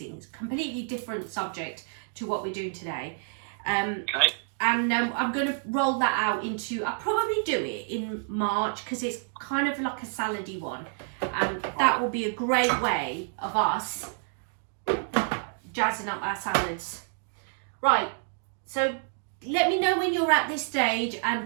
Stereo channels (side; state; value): left; silent; 59 dB below the other